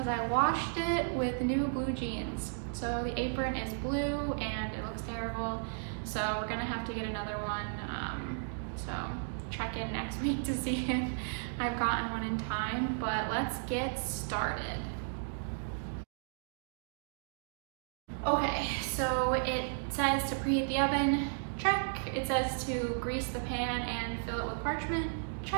I washed it with new blue jeans. So the apron is blue and it looks terrible. So we're gonna have to get another one. So check in next week to see if I've gotten one in time, but let's get started. Okay, so it says to preheat the oven, check. It says to grease the pan and fill it with parchment,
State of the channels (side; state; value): left; silent; digital silence